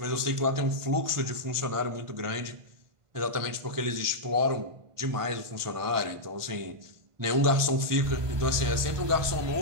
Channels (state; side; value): late; left; 1.5 ms